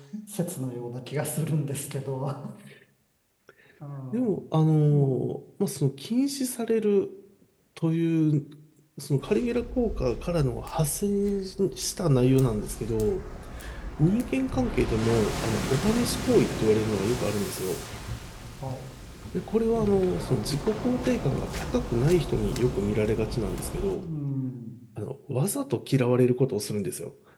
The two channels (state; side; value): identical; both; correlation 1.00